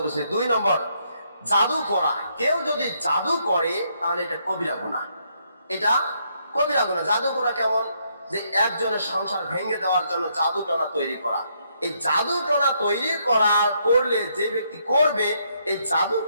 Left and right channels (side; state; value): both; inverted; correlation -0.74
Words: উপস্থিতি, 2 নম্বর, জাদু করা। কেউ যদি জাদু করে তাহলে এটা কবিরা গুনাহ। এটা কবিরা গুনাহ। জাদু করা কেমন? যে একজনের সংসার ভেঙে দেওয়ার জন্য জাদু টনা তৈরি করা। এই জাদু টনা তৈরি করলে যে ব্যক্তি করবে, এই জাদু